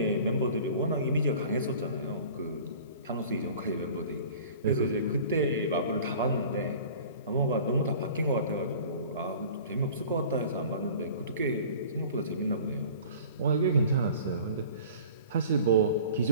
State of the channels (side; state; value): both; inverted; correlation -0.44